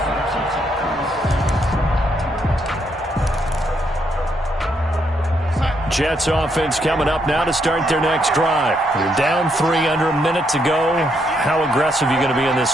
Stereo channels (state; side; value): normal; both; correlation 0.76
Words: Jets offense coming up now to start their next drive. You're down 3 under a minute to go. How aggressive are you going to be in this